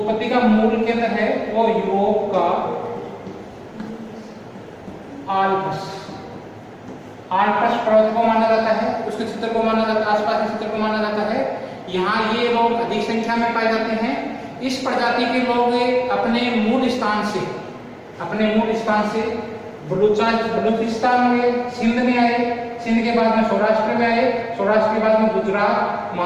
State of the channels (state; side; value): identical; both; correlation 1.00